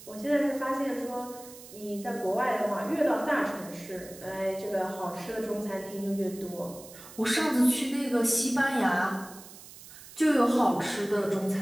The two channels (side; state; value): right; noise; hiss, 17 dB below the sound